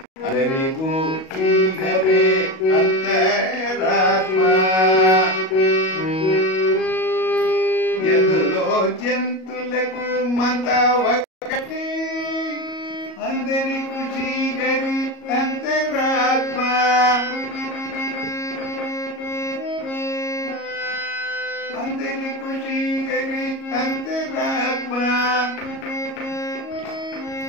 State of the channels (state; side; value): late; right; 37 ms